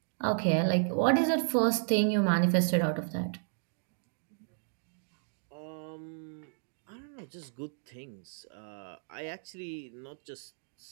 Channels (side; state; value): left; silent; digital silence